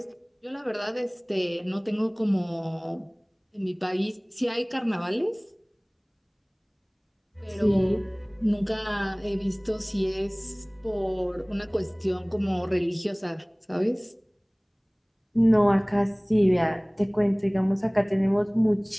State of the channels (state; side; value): identical; both; correlation 1.00